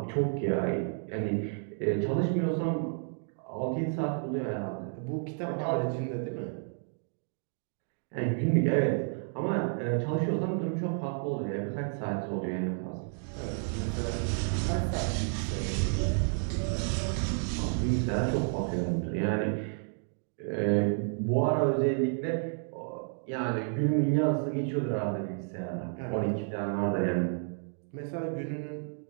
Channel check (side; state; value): left; silent; 57 dB below the other